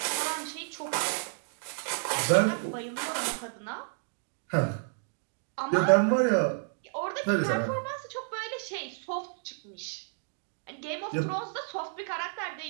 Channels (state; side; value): silent; left; digital silence